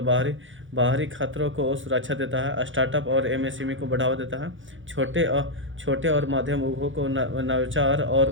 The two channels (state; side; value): late; left; 0.56 ms